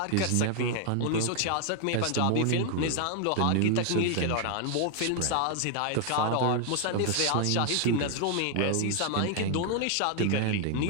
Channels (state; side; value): different; both; correlation 0.00